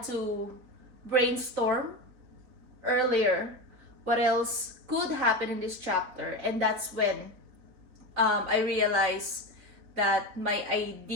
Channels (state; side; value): late; left; 4.2 ms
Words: to brainstorm earlier what else could happen in this chapter, and that's when I realized that my